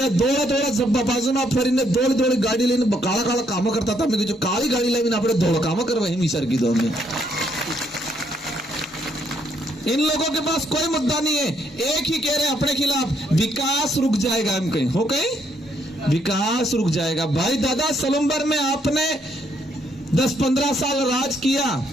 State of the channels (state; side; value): normal; both; correlation 0.72